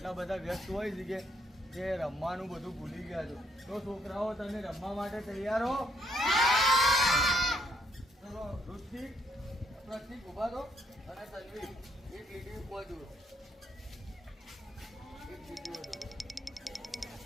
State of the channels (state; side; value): normal; both; correlation 0.71